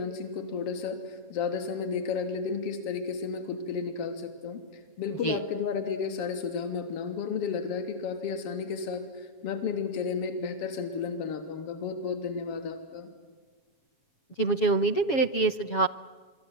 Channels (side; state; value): right; late; 7.3 ms